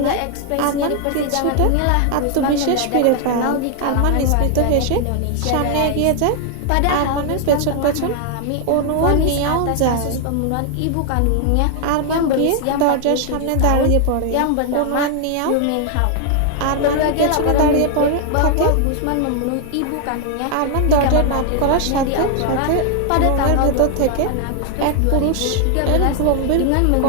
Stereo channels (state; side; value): different; both; correlation 0.00